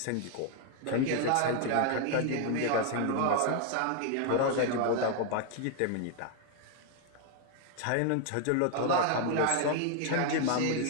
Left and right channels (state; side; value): different; both; correlation 0.00